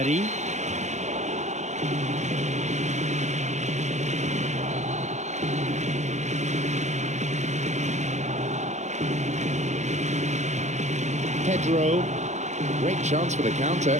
Pedro. Great chance for the counter.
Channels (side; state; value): left; late; 0.34 ms